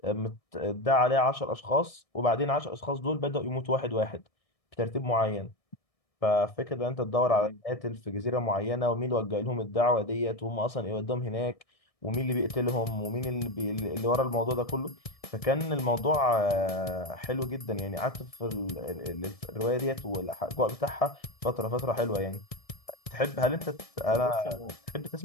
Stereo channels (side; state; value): right; late; 1.6 ms